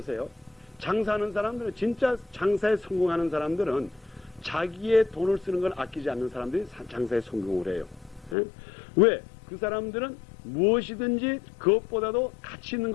장사하는 사람들은 진짜 장사에 성공하는 사람들은 자기의 돈을 쓰는 걸 아끼지 않는 사람들이 장사에 성공을 해요. 왜? 그 사람들은 무엇이든지 그것보다도 가치 있는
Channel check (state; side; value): drops out; right; at 8.3 s